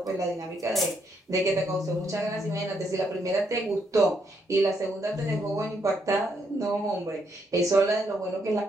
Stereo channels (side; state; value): both; normal; correlation 0.75